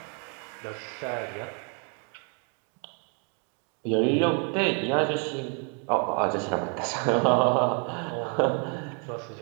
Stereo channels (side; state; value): left; quieter; 39.0 dB